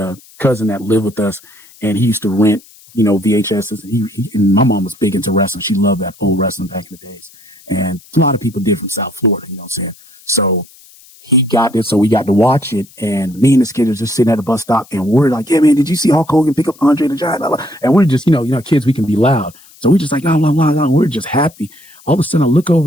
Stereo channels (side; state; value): left; noise; hiss, 25 dB below the sound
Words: a cousin that lived with us, and he used to rent, you know, VHSs. And my mom was big into wrestling. She loved that old wrestling back in the days. And a lot of people did from South Florida, you know what I'm saying? So he got this, so we got to watch it. And me and this kid was just sitting at the bus stop, and we're like, yeah, man, did you see Hulk Hogan pick up Andre the Giant? And we're just, you know, kids, we can be loud. So we're just like, blah, blah, blah, blah. We're just happy. All of a sudden I look